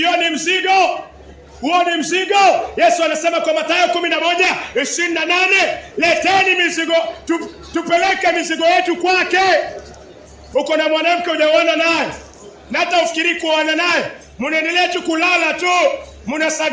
ni mzigo. Huo ni mzigo. Yesu anasema kwa Mathayo 11:28, leteni mizigo, tupeleke mizigo yetu kwake. Uko na mwanamke hujaona naye, na hata ufikiri kuoana naye, mnaendelea tu kulala tu,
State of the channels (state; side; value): identical; both; correlation 1.00